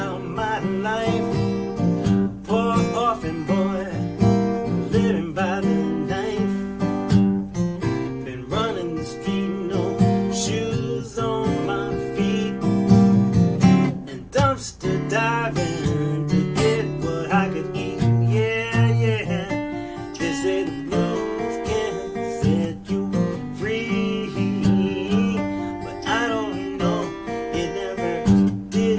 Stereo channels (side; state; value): both; identical; correlation 1.00